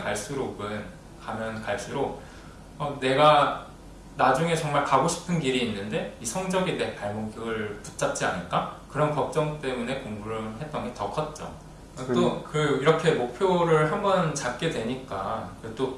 갈수록 내가 나중에 정말 가고 싶은 길이 있는데 이 성적이 내 발목을 붙잡지 않을까? 그런 걱정 때문에 공부를 했던 게 더 컸죠. 또 이렇게 목표를 한번 잡게 되니까 또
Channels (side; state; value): both; identical; correlation 1.00